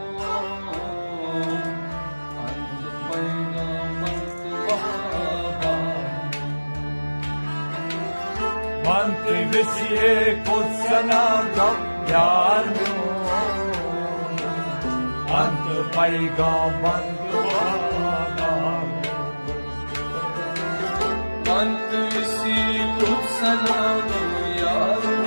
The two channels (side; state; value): both; inverted; correlation -1.00